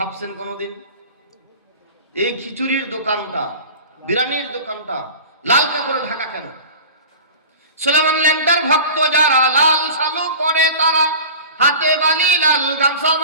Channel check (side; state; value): both; inverted; correlation -0.37